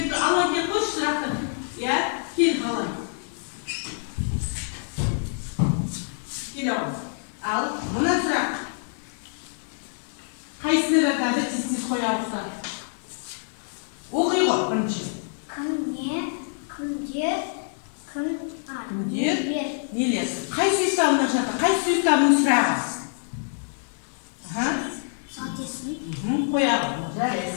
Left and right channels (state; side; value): silent; right; digital silence